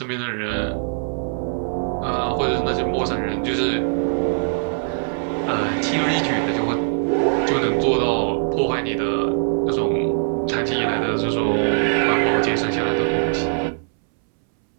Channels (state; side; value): silent; left; 65 dB below the other